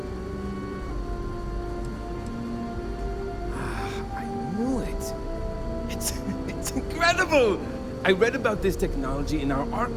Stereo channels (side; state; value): both; identical; correlation 1.00